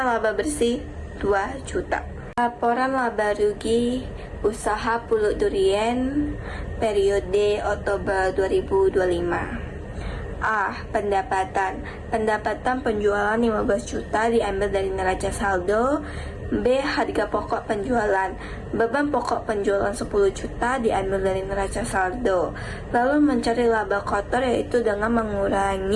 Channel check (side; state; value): both; identical; correlation 1.00